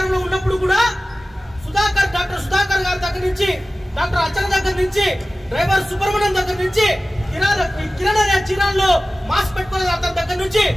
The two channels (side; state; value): both; normal; correlation 0.96